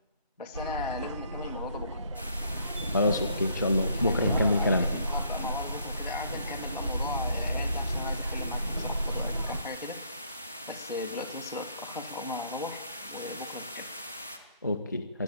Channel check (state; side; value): inverted; both; correlation -0.66